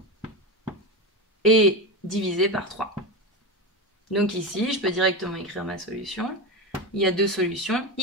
et divisé par 3. Donc ici, je peux directement écrire ma solution. Il y a deux solutions,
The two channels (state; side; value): normal; both; correlation 0.18